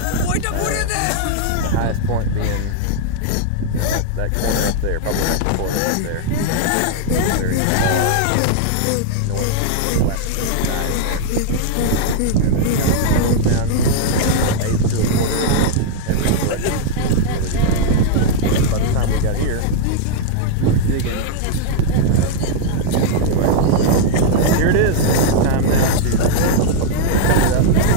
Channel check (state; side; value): different; both; correlation 0.00